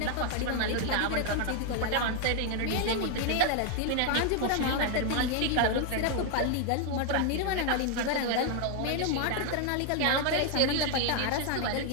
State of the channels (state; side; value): different; both; correlation 0.00